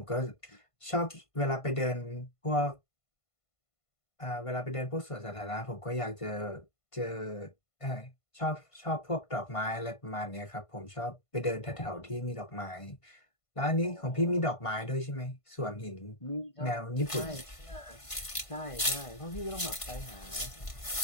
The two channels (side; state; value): right; late; 1.5 ms